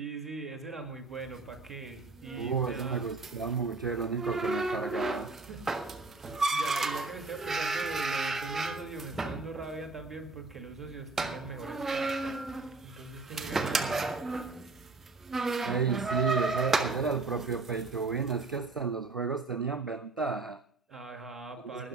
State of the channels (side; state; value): left; quieter; 3.7 dB